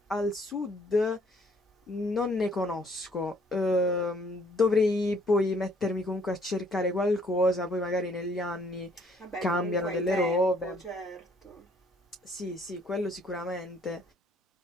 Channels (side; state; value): both; normal; correlation 0.63